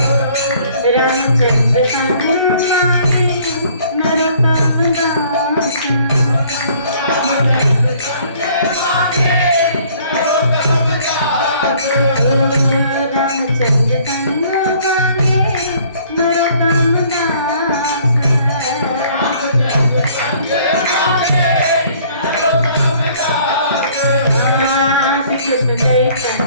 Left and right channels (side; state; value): both; inverted; correlation -0.57